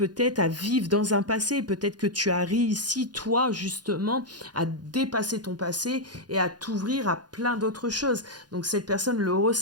à vivre dans un passé. Peut-être que tu as réussi, toi, justement, à dépasser ton passé et à t'ouvrir à plein d'autres choses. Donc cette personne le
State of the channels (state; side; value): late; left; 0.69 ms